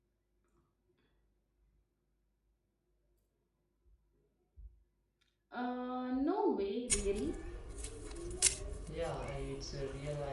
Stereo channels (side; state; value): both; identical; correlation 1.00